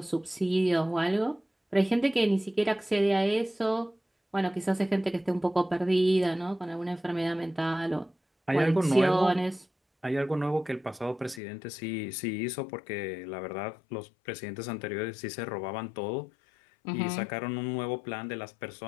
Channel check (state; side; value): drops out; right; at 11.4 s